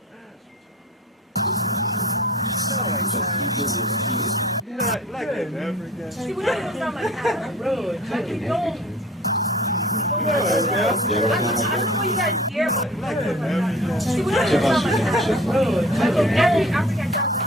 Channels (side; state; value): both; normal; correlation 0.44